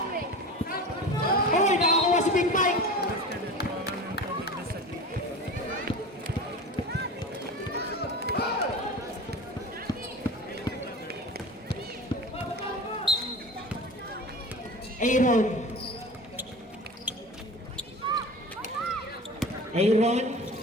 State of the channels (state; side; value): normal; both; correlation 0.34